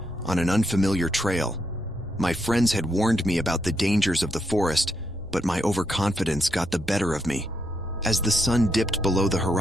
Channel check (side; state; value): both; normal; correlation 0.79